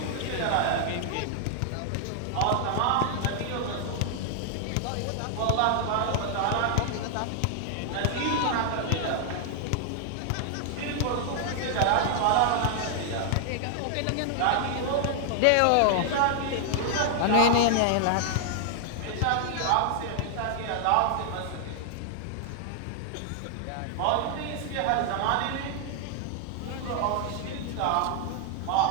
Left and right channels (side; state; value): both; different; correlation -0.01